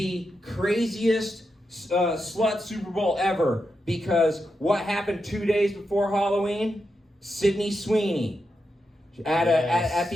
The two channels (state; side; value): normal; both; correlation 0.86